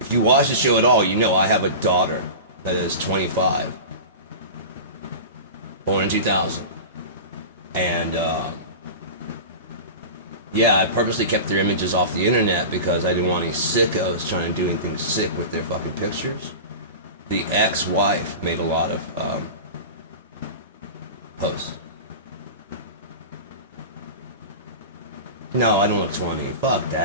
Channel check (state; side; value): inverted; both; correlation -0.30